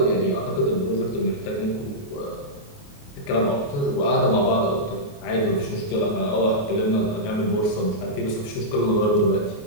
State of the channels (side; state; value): right; late; 28 ms